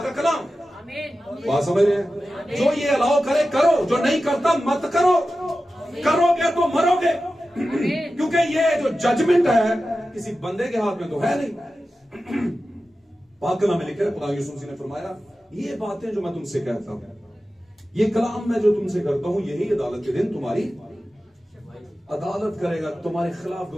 का कलाम। बात समझ रहे हैं? जो ये अलाउ करे करो, जो नहीं करता मत करो। करोगे तो मरोगे। क्योंकि ये जो जजमेंट है किसी बंदे के हाथ में तो है नहीं। पाक कलाम में लिखा है, खुदा यीशु मसीह ने फरमाया ये बातें जो मैं तुमसे कहता हूं, ये कलाम मैं जो तुमसे करता हूं, यही अदालत के दिन तुम्हारी अदालत करेगा, तुम्हारे खिलाफ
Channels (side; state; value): both; normal; correlation 0.94